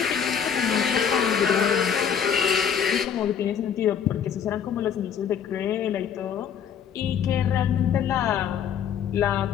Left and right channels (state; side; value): quieter; right; 8.0 dB